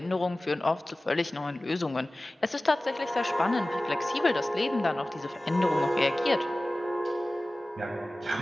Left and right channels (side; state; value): both; normal; correlation 0.97